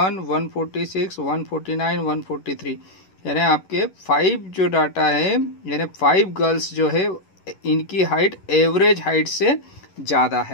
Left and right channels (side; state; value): right; late; 11 ms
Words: 146, 149, 143, यानी आपके 5 जो डाटा है, यानी 5 गर्ल्स जो है इनकी हाइट एवरेज हाइट से ज़्यादा